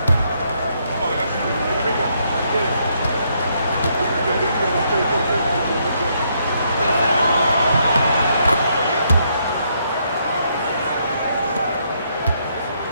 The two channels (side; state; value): both; inverted; correlation -0.74